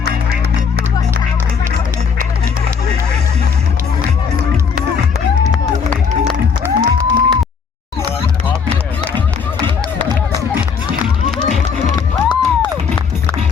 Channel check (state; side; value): quieter; right; 6.1 dB